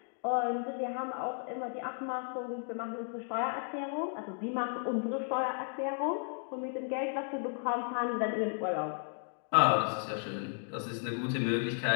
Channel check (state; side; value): silent; right; 55 dB below the other